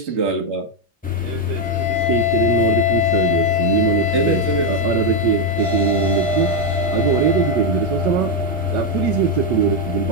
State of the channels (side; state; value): both; normal; correlation 0.04